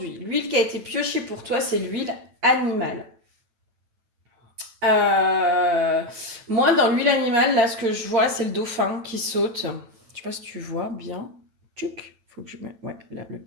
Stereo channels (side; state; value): left; late; 9.0 ms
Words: l'huile qui a été piochée pour toi, c'est l'huile animale. Euh, Moi, dans l'huile animale, là, ce que je vois, c'est le dauphin qui saute. Je sais pas si tu vois bien. Tuc. Faut que je mette. Ouais, là, le